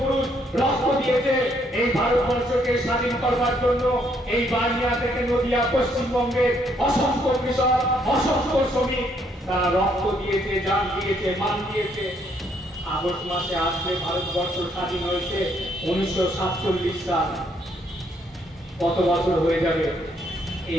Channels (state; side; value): normal; both; correlation 0.70